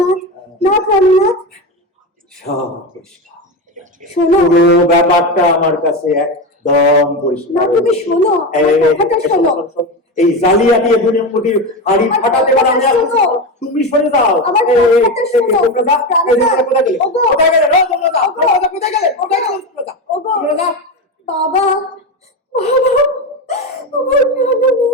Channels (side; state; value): both; normal; correlation 0.18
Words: না প্রাণনাথ, সব পরিষ্কার। শোনো, পুরো ব্যাপারটা আমার কাছে একদম পরিষ্কার। না তুমি শোনো, আমার কথাটা শোনো। এই জালিয়াতি দুনিয়ামুখী হাড়ি ফাটাতে পারে আমি। তুমি সরে যাও, আমার কথাটা শোনো। কোথায় গেলে কোথায় গেলে বাবা, বাবা,